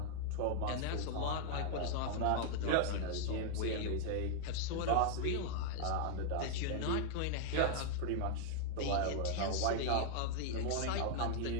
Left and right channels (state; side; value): different; both; correlation -0.01